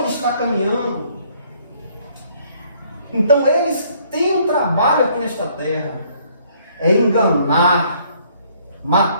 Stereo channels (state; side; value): inverted; both; correlation -0.63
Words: está caminhando. Então eles têm um trabalho aqui nesta terra. É enganar,